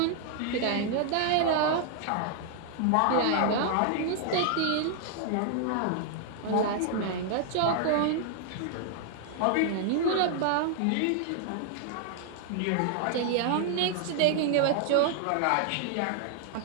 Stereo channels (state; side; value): different; both; correlation 0.00